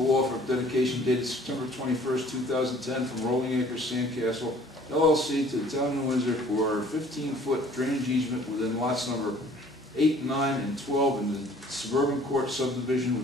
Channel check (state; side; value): normal; both; correlation 0.54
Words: offer of dedication dated September 21st, 2010 from Rolling Acres Sandcastle LLC to the Town of New Windsor for a 15-foot drainage easement within lots number 8, 9, and 12 in the Suburban Court subdivision,